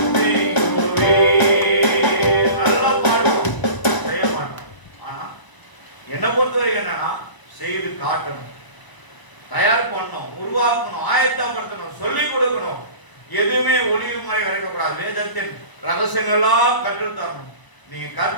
தெய்வமே. நல்லா பாடுவோம், செய்ய மாட்டோம். ஆனா என்னை பொறுத்தவரைக்கும் என்னன்னா செய்து காட்டணும், தயார் பண்ணணும், உருவாக்கணும், ஆயத்தப்படுத்தணும், சொல்லிக் கொடுக்கணும். எதுவுமே ஒளிவு முறை வரைக்கக்கூடாது. வேதத்தின் ரகசியங்கள்லாம் கற்றுத்தரணும். நீங்க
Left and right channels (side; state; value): right; late; 1.0 ms